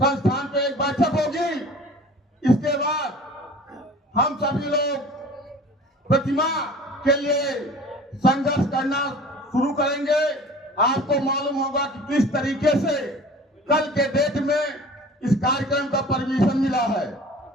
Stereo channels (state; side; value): normal; both; correlation 0.44